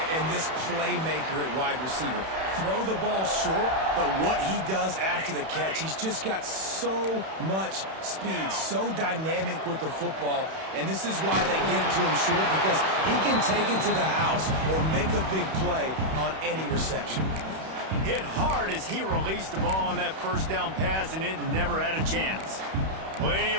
and this playmaker at wide receiver. Throw the ball short, but what he does after the catch, he's just got so much speed, so dynamic with the football, and this is why they get it to him short, because he can take it to the house or make a big play on any reception. Hit hard as he released the ball on that first down pass, and it never had a chance. Plenty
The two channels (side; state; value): left; late; 31 ms